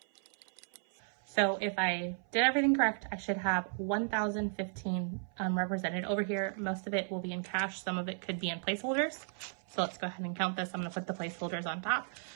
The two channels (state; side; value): silent; left; 55 dB below the other